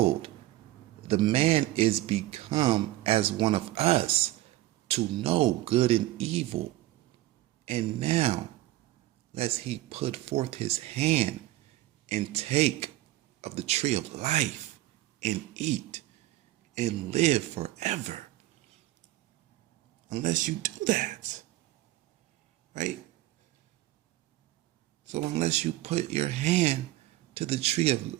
the man is become as one of us to know good and evil. And now, lest he put forth his hand and take of the tree of life and eat and live forever. Unless you do that. Right? So unless you put your hand to the tree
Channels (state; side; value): quieter; left; 16.1 dB